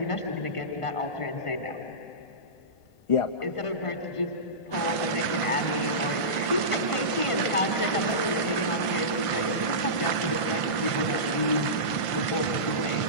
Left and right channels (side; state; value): right; late; 1.5 ms